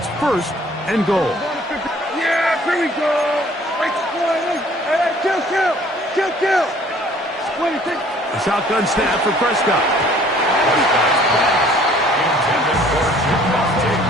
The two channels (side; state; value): both; normal; correlation 0.56